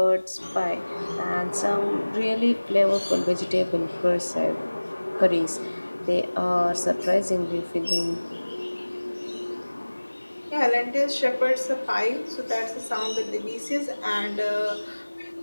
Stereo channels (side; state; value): both; inverted; correlation -1.00